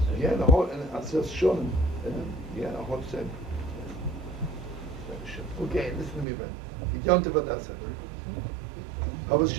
Yeah, the whole, and it says Shonim. Yeah, the whole sefer. Okay, listen to me, man. Yontif Adasa. How was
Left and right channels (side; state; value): left; drops out; at 6.2 s